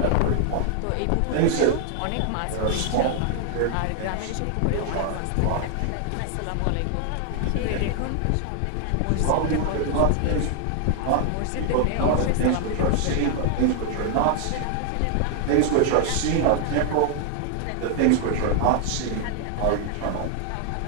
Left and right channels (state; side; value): different; both; correlation 0.00